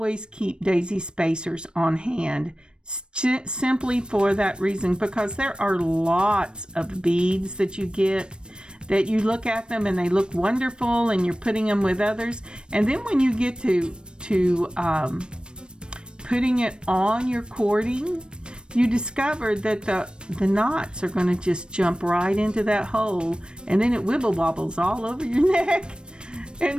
keep daisy spacers on hand, simply for that reason, because there are lots of beads that you get that you look at them and they look wonderful and you're putting them with others, and then when you get to putting it on your cording, you discover that the knots are going to just jump right into that hole, and then it wibble wobbles all over your neck.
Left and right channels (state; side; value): late; left; 0.053 ms